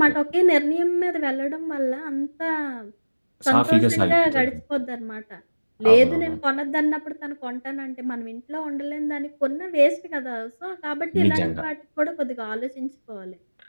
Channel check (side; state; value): both; inverted; correlation -1.00